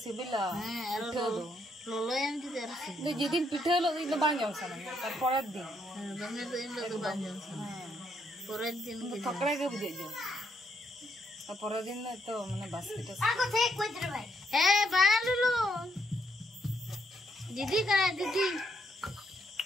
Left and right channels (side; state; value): both; normal; correlation 0.75